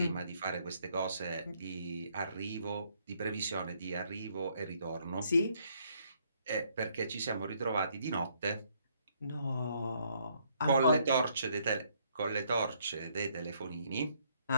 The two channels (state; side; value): inverted; both; correlation -0.69